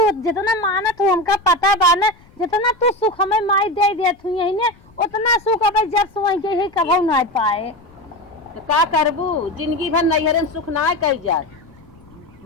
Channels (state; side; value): noise; left; rumble, 28 dB below the sound